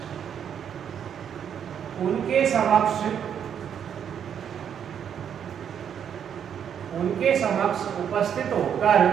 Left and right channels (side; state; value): left; quieter; 8.4 dB